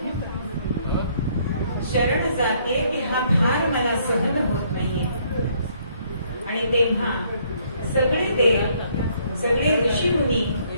शरण जाते की हा भार मला सहन होत नाहीये. आणि तेव्हा सगळे देव सगळे ऋषीमुनी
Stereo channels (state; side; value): inverted; both; correlation -0.66